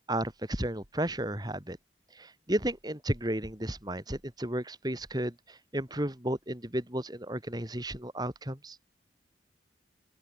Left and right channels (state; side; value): normal; both; correlation 0.70